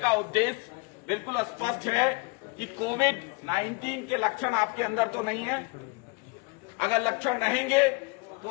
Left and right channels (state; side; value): quieter; right; 29.8 dB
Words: उद्देश्य बिल्कुल स्पष्ट है कि कोविड-19 के लक्षण आपके अंदर तो नहीं है। अगर लक्षण रहेंगे तो